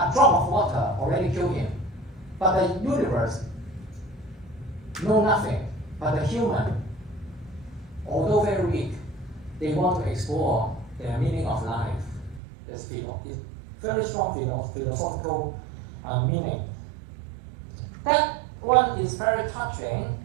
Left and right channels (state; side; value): drops out; left; at 12.4 s